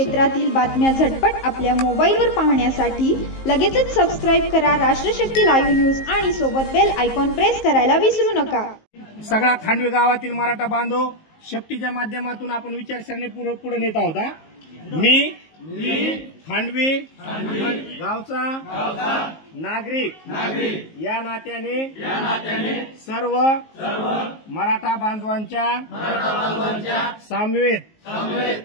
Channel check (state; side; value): late; right; 19 ms